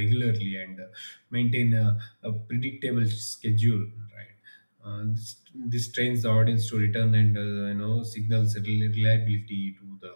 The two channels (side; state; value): both; inverted; correlation -1.00